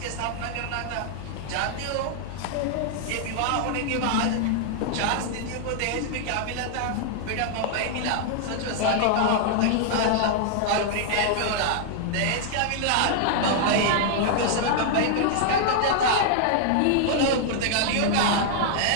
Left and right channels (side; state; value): both; different; correlation -0.01